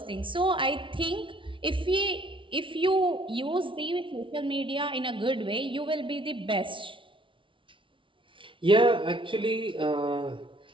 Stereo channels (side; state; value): left; late; 0.25 ms